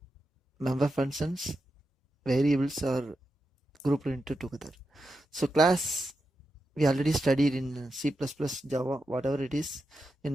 member functions, variables are grouped into together. So class, we already studied in C++, Java, whatever it is,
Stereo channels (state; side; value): normal; both; correlation 0.88